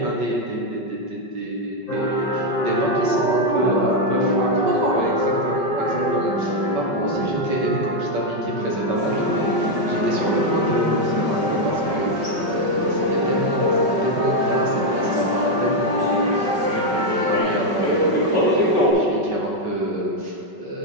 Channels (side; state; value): left; late; 5.3 ms